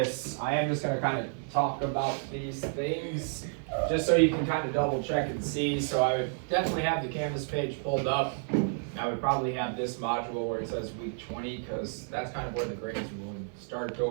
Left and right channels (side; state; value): left; silent; 57 dB below the other